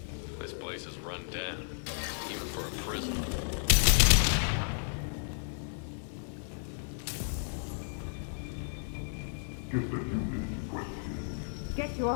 This place is run down, even for a prison. Just a human question. Get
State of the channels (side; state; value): right; silent; 56 dB below the other